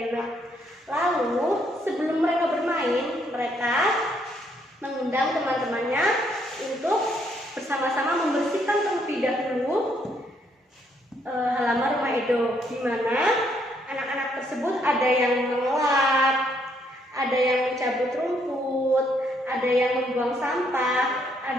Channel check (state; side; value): normal; both; correlation 0.71